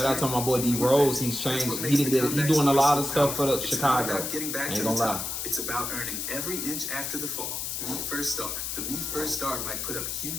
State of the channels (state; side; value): noise; left; hiss, 3 dB below the sound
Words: out to my boy D Rose. He's changed. He doing a lot of stuff for the Chicago. Ain't gonna lie. It's about earning every inch after the fall. Me First Star. The Me First Star might put up